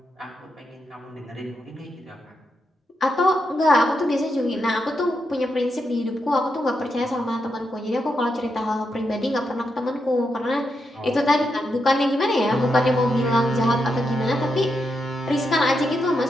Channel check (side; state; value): both; normal; correlation 0.84